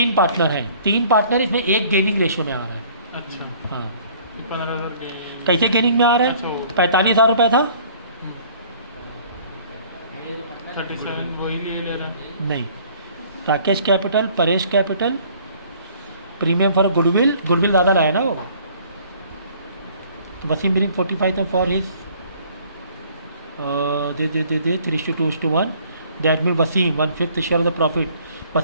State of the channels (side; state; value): both; inverted; correlation -0.56